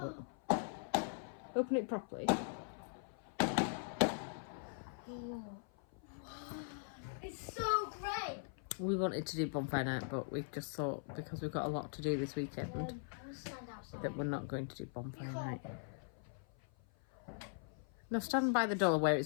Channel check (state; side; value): silent; right; 50 dB below the other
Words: but open it properly. It's so great. We wanted to do bonfire night, but we just thought, because we've got a lot to do this weekend, I'll stand outside. that we're not going to do bonfire night. No, stand by the door where